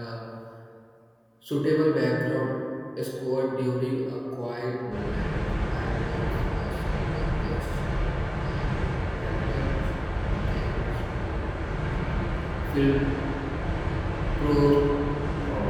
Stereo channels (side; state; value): both; identical; correlation 1.00